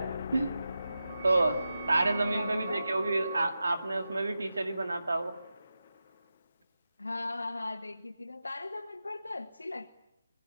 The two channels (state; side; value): inverted; both; correlation -0.91